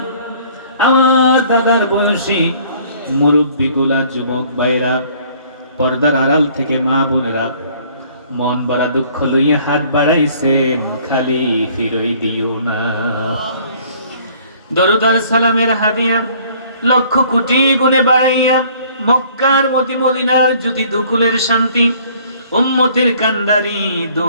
আমার দাদার বয়সী মুরব্বীগুলা, যুবক ভাইরা, পর্দার আড়াল থেকে মা বোনেরা মন বড়া দুঃখ লইয়া হাত বাড়াইছেন, খালি ফিরই দিও না। দরুদ আর সালামের হাদিয়া লক্ষ কোটি গুণে বাড়াইয়া মক্কার মদিনার জ্যোতি দুকুলের শান্তি উম্মতের কান্ডারি দো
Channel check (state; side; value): inverted; both; correlation -0.57